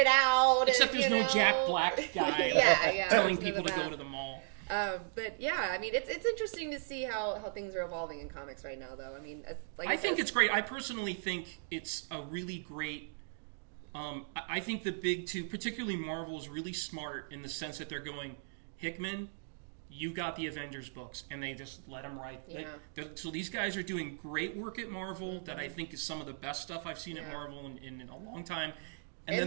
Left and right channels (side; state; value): left; silent; digital silence